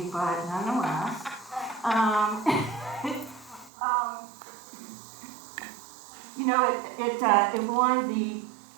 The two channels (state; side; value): drops out; left; at 3.7 s